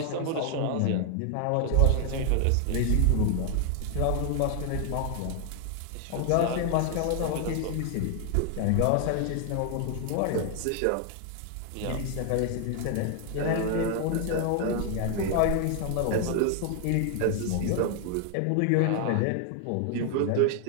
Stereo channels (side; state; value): both; different; correlation 0.00